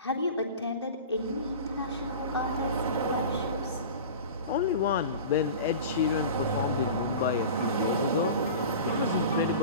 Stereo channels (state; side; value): inverted; both; correlation -0.35